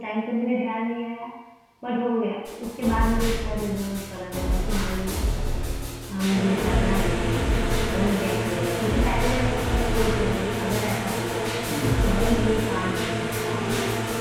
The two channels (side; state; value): both; identical; correlation 1.00